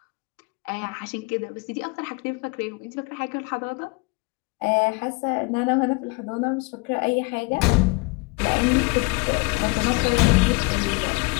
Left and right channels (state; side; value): quieter; right; 28.6 dB